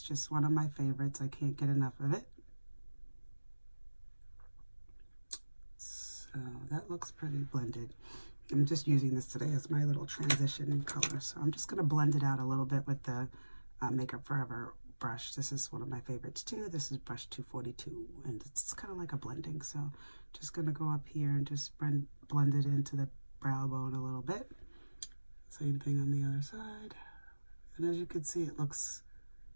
just one of my favorites. I can't get enough of it. So that looks pretty blended. I'm just using this today as my little transition color. So I'm just going to blend it out a little bit with the Makeup Forever brush. This is one of my favorites too. This is brush 242, and it's kind of like a blending. So just going to go up here and just blend it into the brow bone a little bit. Same thing on the other side. And as you can see, it looks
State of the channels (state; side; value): inverted; both; correlation -1.00